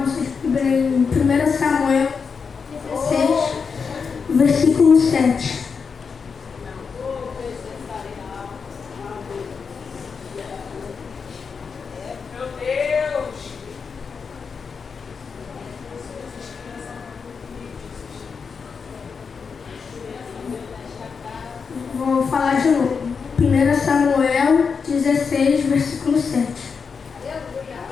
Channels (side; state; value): right; quieter; 5.6 dB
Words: Bíblia em 1 Samuel 16, versículo 7. Meu Deus. Vou falar de novo. 1 Samuel 16, versículo 7.